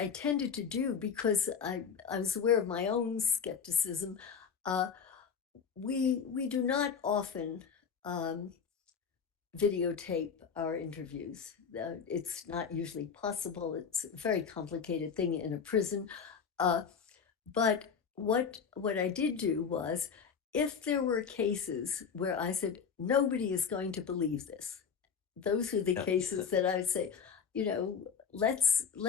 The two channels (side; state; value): right; quieter; 6.5 dB